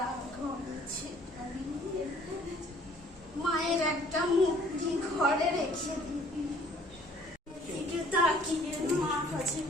ঘর ছেটাবি। মায়ের একটা মূর্তি ঘরে রেখে দিবি। দিকে তাকিয়ে মা কাছে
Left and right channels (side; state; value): both; normal; correlation 0.57